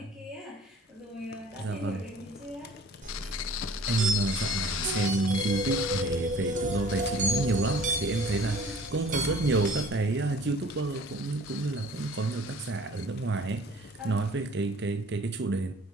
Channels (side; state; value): both; normal; correlation 0.50